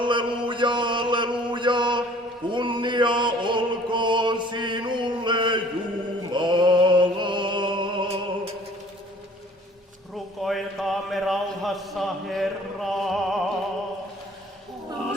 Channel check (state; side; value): normal; both; correlation 0.52